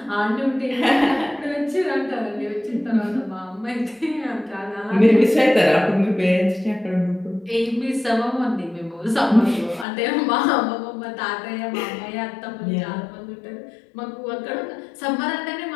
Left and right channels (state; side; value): drops out; right; at 9.9 s